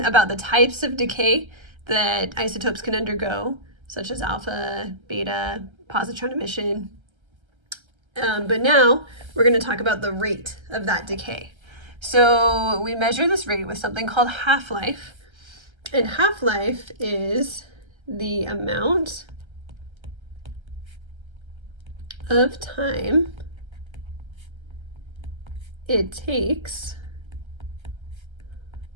about the types of decay that isotopes can undergo, such as alpha, beta, positron emission. But now we're going to talk about the rate of that decay. So we measure this rate with something called half-life. And half-life is the amount of time it takes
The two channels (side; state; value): left; late; 1.3 ms